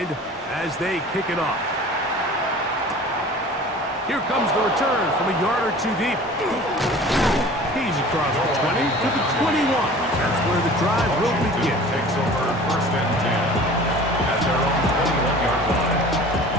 as they kick it off. Here comes the return from a yard or two deep. He's across the 20 to the 21. That's where the drive will begin. Takes over first and 10 at their own 21-yard line.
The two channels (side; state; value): both; normal; correlation 0.43